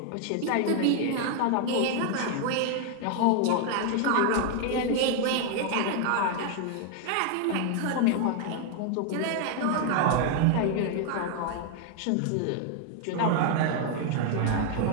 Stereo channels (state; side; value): different; both; correlation 0.00